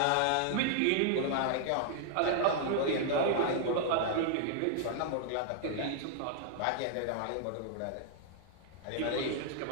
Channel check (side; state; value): both; different; correlation 0.00